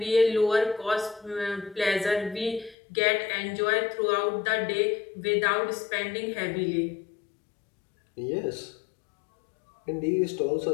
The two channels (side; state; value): right; drops out; at 2.8 s